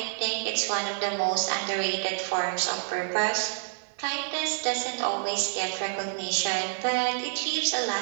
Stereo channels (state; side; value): silent; left; digital silence